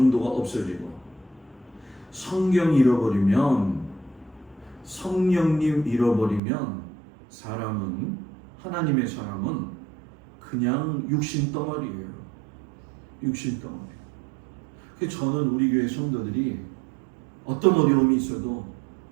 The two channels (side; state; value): left; drops out; at 6.4 s